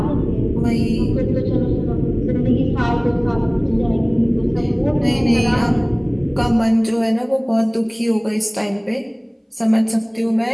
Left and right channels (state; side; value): identical; both; correlation 1.00